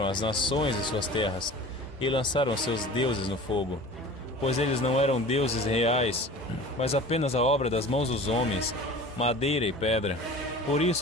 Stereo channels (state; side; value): normal; both; correlation 0.40